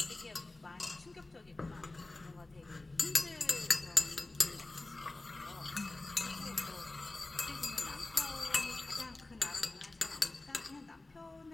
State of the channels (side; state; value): right; quieter; 3.0 dB